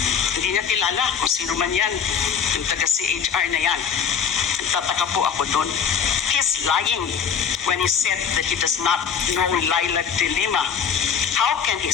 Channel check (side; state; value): right; quieter; 7.2 dB